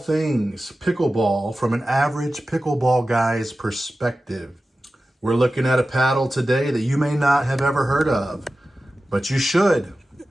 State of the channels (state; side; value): normal; both; correlation 0.94